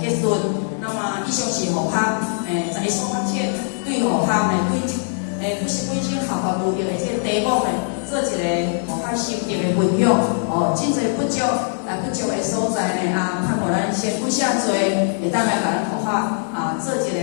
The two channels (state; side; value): silent; right; digital silence